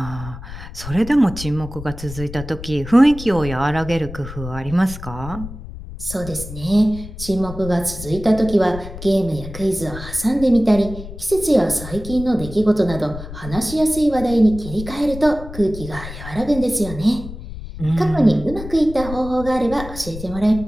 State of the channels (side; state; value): left; noise; rumble, 11 dB below the sound